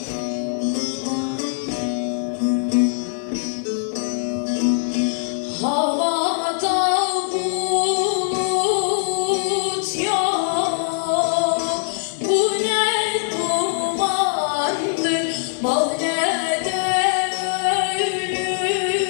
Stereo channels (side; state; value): right; silent; digital silence